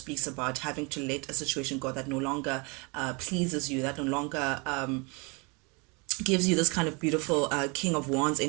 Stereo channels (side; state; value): left; quieter; 30.3 dB